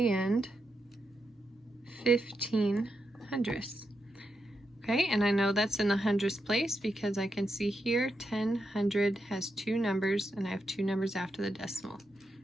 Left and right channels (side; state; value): both; normal; correlation 0.85